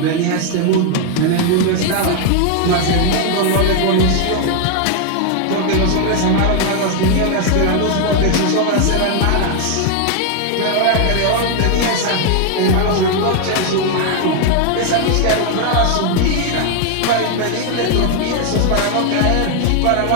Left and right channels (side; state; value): both; different; correlation 0.00